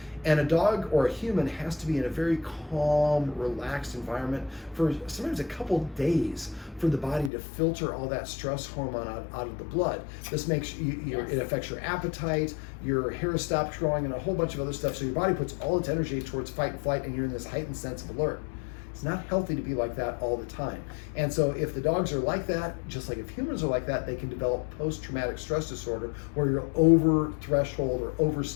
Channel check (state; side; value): drops out; right; at 7.3 s